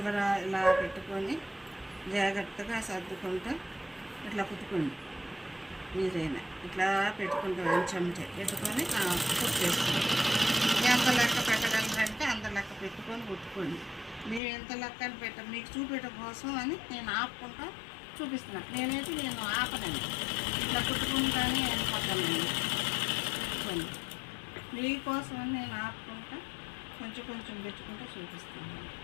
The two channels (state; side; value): drops out; right; at 14.4 s